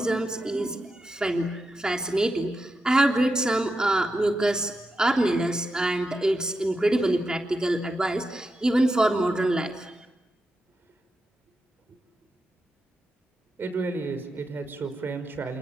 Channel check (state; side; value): normal; both; correlation 0.88